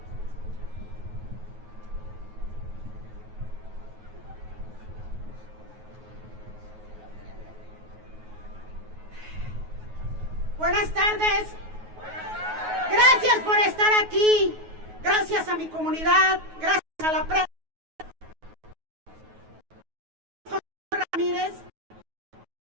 Buenas tardes. Gracias por estar aquí. Gracias a mi comunidad. Gracias a la prensa. Ramírez,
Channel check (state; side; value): late; left; 9.4 ms